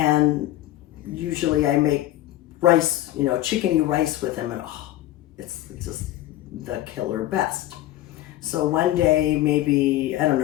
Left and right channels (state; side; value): quieter; right; 14.7 dB